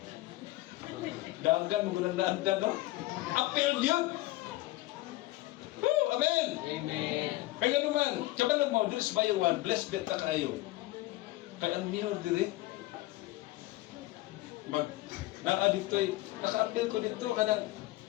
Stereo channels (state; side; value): quieter; right; 18.3 dB